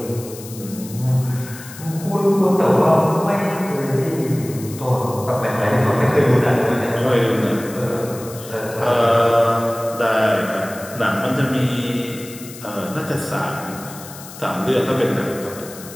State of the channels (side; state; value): left; noise; hiss, 16 dB below the sound